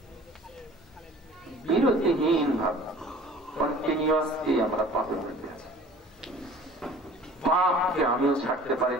বিরতিহীন ভাবে কন্টিনিউয়াসলি আমরা পাপের মধ্যে আছি। পাপকে আমিও ছাড়তে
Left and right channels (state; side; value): normal; both; correlation 0.47